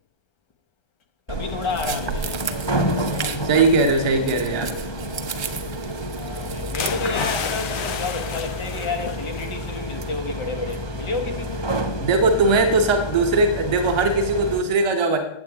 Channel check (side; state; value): right; late; 1.3 ms